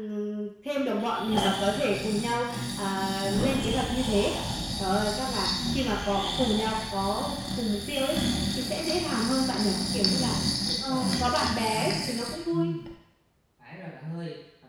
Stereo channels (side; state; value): both; identical; correlation 1.00